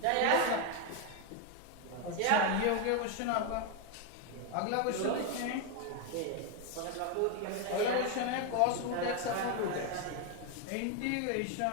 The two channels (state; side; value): different; both; correlation 0.02